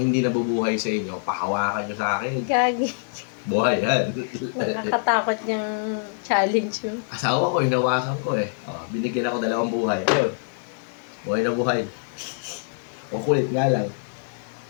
nabubuhay sa inyo, pahawakan nyo sa akin. Gagi. Buhay yan. Nakakatakot yung challenge mo. Asawa ko, hinawakan ko eh. Oh, binigyan ako 2 buhay. Ayun. Buhay na buhay. O kulit nga lang.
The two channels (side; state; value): right; silent; digital silence